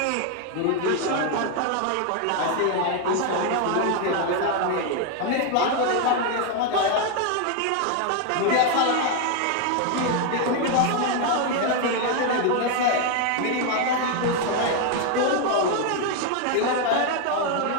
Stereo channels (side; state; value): both; different; correlation 0.01